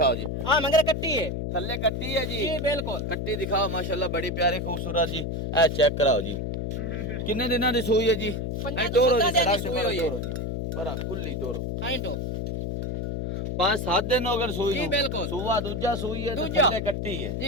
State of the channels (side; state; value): left; noise; hum, 3 dB below the sound